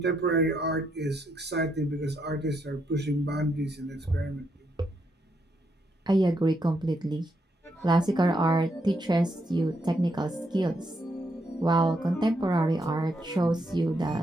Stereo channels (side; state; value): both; normal; correlation 0.78